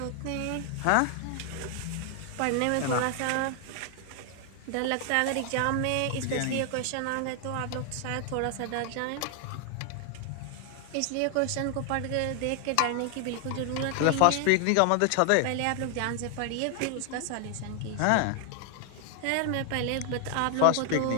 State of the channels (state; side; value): different; both; correlation 0.00